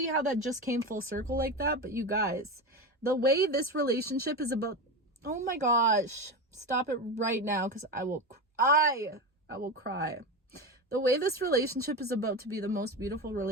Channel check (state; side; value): normal; both; correlation 0.20